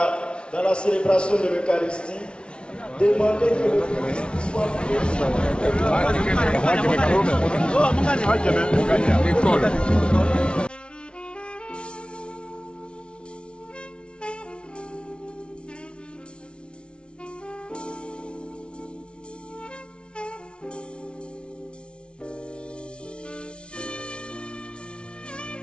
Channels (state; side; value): late; right; 0.057 ms